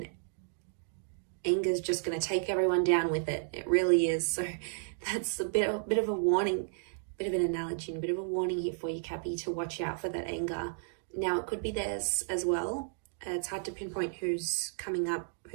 anger is just going to take everyone down with it. It really is. So that's a bit of a warning, bit of an analogy, and a bit of a warning here for you, Cappy, to watch out for that anger. Now, it could be theirs as well. It's hard to pinpoint who's coming up,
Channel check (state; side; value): silent; left; digital silence